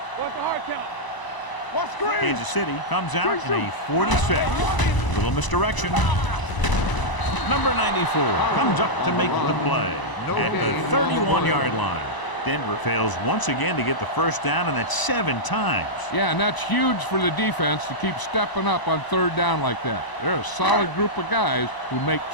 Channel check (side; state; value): right; late; 1.0 ms